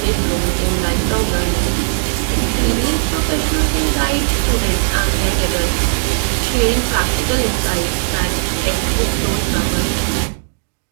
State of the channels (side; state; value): left; silent; digital silence